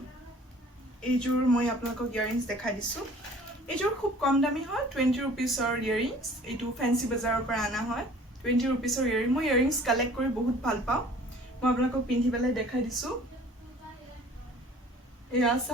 এইযোৰ মই আপোনালোকক ইয়াৰিংছ দেখাই দিছোঁ এইযোৰ খুব কম দামী হয় 20 ৰুপিজৰ ইয়াৰিংছ এইটো ফেন্সি বজাৰৰ পৰা অনা হয় 20 ৰুপিজৰ ইয়াৰিং মই ইয়াৰিংছ কালেক্ট কৰি বহুত ভাল পাওঁ মই আপোনালোকক পিন্ধি পেলাই দেখাই দিছোঁ এয়া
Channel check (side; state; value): both; normal; correlation 0.50